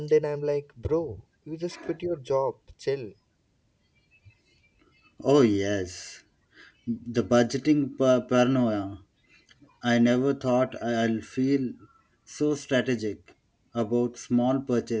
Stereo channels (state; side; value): identical; both; correlation 1.00